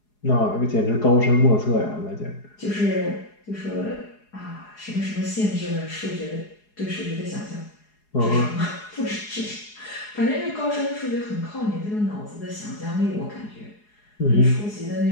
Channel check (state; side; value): late; right; 4.8 ms